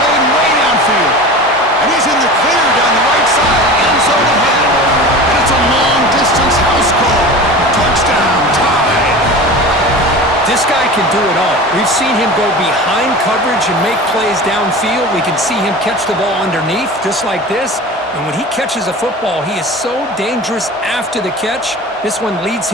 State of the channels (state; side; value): normal; both; correlation 0.34